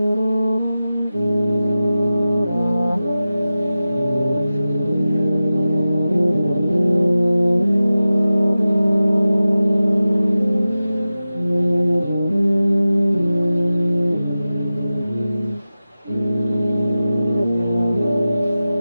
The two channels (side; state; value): both; inverted; correlation -0.95